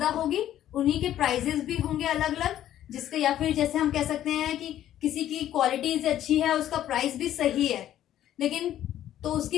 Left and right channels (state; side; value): quieter; right; 12.0 dB